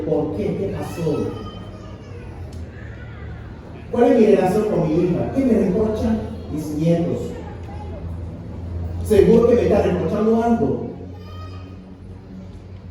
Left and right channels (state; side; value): identical; both; correlation 1.00